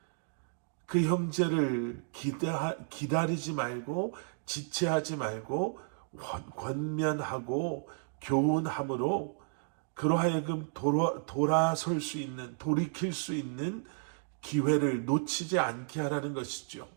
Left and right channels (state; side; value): silent; left; digital silence